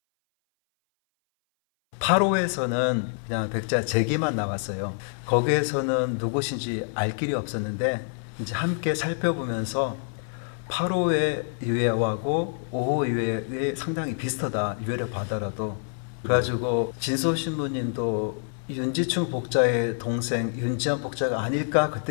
기쁨이었다. 파로에서는 그냥 백자 제기만 나왔어요. 거기에서는 누구신지 알 길이 없었는데 이제 함께 살펴보면서 파로의 유해하고 오호 유해의 상당히 비슷하다, 유해를 봐더라도. 그래가지고 진소 신부님도 윤지충 복자의 동생 윤지연 복자가 아닐까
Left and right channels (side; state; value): right; silent; 58 dB below the other